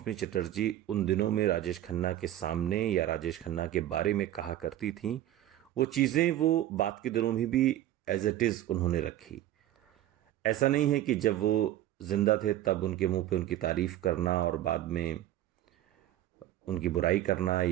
चटर्जी उन दिनों में राजेश खन्ना के सामने या राजेश खन्ना के बारे में कहा करती थीं, वो चीज़ें वो बात के दिनों में भी एज इट इज़ उन्होंने रखी। ऐसा नहीं है कि जब वो जिंदा थे तब उनके मुंह पे उनकी तारीफ करना और बाद में उनकी बुराई करना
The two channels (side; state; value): left; quieter; 13.3 dB